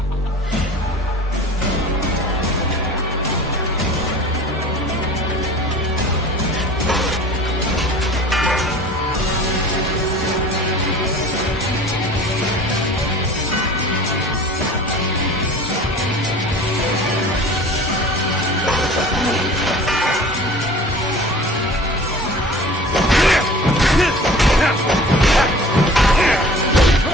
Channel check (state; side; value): normal; both; correlation 0.42